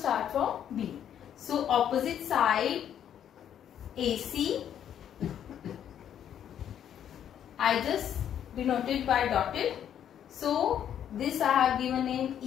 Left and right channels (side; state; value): right; quieter; 9.7 dB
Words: from B. So opposite side AC, I just denoted by dotted. So this I have given name